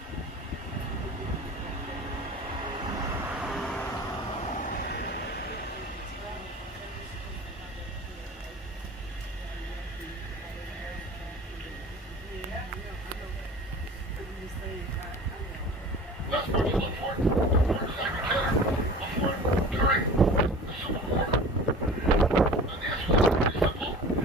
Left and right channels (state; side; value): normal; both; correlation 0.40